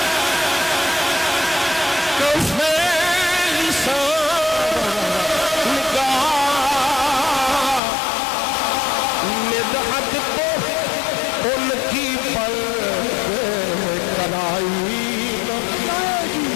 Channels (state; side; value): drops out; right; at 7.8 s